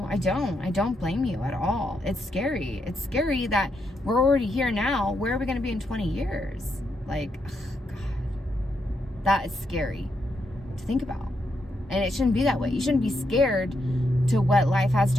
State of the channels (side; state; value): both; normal; correlation 0.80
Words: I don't blame you at all. It's scary. It's scary that we're already here now. Where are we going to be in 20 years? Like, ugh, God, that is scary to think about. And it shouldn't be that way. You shouldn't be scared to what life has